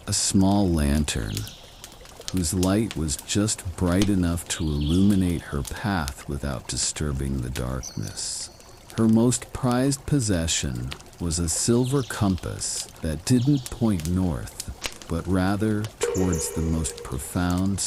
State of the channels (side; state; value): both; identical; correlation 1.00